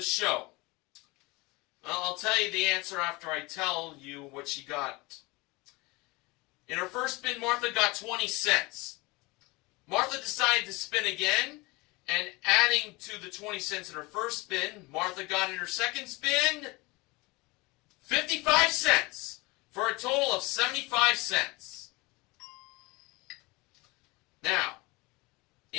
show? Well, I'll tell you the answer after I tell you what she got. In her first spin, Martha got 20 cents. Martha decided to spin again, and adding to the 20 cents in her first spin, Martha got in her second spin 55 cents for a total of 75 cents. Now,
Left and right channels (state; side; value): quieter; right; 24.2 dB